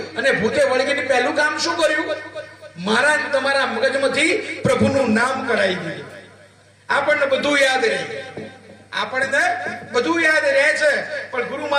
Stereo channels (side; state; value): both; identical; correlation 1.00